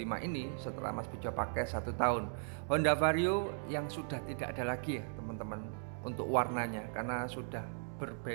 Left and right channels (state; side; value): silent; left; 53 dB below the other